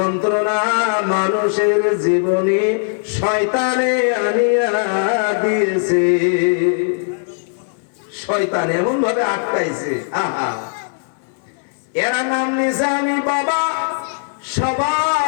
মানুষের জীবনে শয়তানে আনিয়া দিয়েছে। শয়তান এমন ভাবে আটকাইছে, আহা। এরা নাম নিছে আমি বাবা,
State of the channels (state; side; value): silent; right; 65 dB below the other